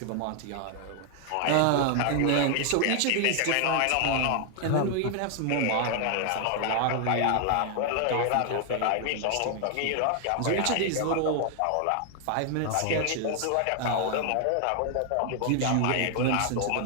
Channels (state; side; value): different; both; correlation 0.00